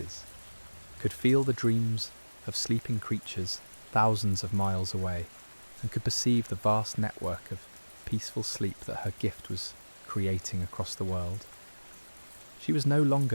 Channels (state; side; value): inverted; both; correlation -1.00